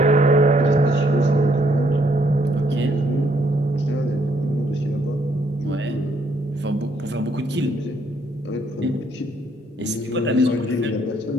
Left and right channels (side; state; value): both; normal; correlation 0.70